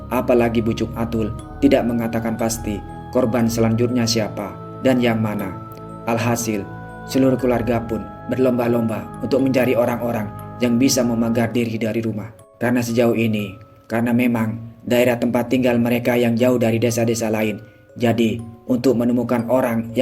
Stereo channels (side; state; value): both; identical; correlation 1.00